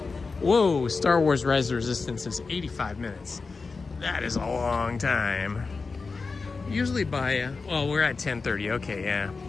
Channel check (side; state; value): right; quieter; 4.3 dB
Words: Whoa, Star Wars Rise of the Resistance is 85 minutes. That is a long time. Usually by, well, we're at 10:30, okay, yeah.